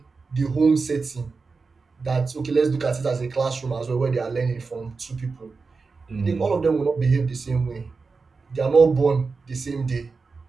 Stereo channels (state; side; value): quieter; left; 4.4 dB